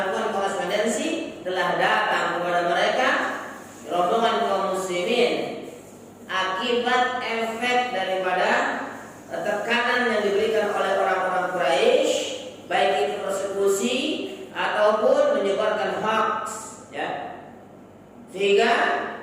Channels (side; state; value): both; identical; correlation 1.00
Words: korespondensi, telah datang kepada mereka rombongan kaum muslimin akibat efek daripada tekanan yang diberikan oleh orang-orang Quraisy, baik itu persekusi ataupun menyebarkan hoax, ya. Sehingga